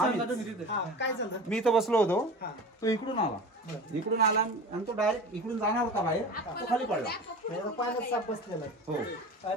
तुम्ही तिथे. काय झालं? मी इथं बसलो होतो हा. तो इकडून आला आणि तो डायरेक्ट इकडून जाणार होता बाहेर तो खाली पडला. म्हणजे पाण्यात साप बसलेला आहे. हो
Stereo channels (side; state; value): both; normal; correlation 0.34